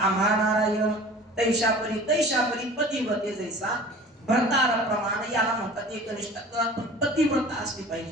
नारायण तैशा परी पतिव्रते जैसा भरतार प्रमाण. याला म्हणतात एकनिष्ठता. पतिव्रता असली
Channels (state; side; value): normal; both; correlation 0.42